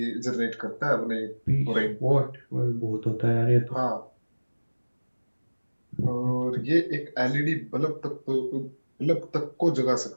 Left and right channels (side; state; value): both; inverted; correlation -1.00